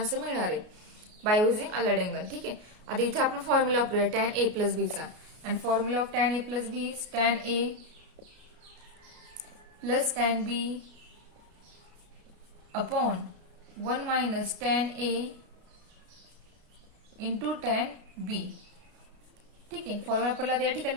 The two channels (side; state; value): left; late; 33 ms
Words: मिळणार आहे बाय युझिंग अलाइड अँगल. ठीक आहे, आता इथे आपण फॉर्म्युला वापरूया tan a प्लस बीचा, आणि formula of tan a plus B is tan a plus tan b upon 1 minus tan a into tan b. ठीक आहे, फॉर्म्युला आपल्याला या ठिकाणी